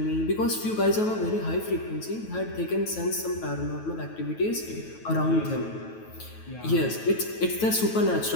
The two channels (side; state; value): right; late; 9.2 ms